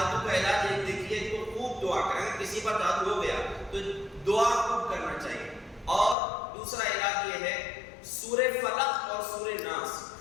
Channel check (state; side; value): drops out; right; at 6.2 s